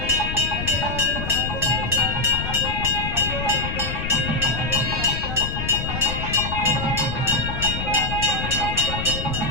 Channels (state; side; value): noise; left; rumble, 5 dB below the sound